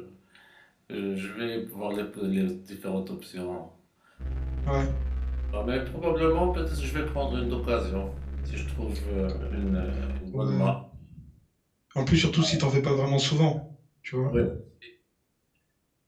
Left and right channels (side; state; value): both; identical; correlation 1.00